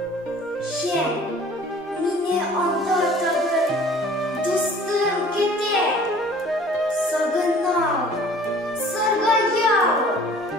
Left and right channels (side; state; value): both; normal; correlation 0.50